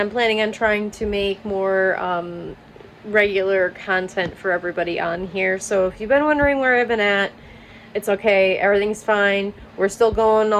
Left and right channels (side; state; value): both; identical; correlation 1.00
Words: planning on trying to make more regular content for everybody on here. So if you've been wondering where I've been at, it's okay, everything's fine. We're still going